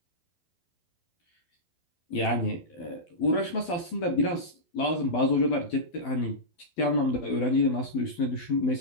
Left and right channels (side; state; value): right; late; 12 ms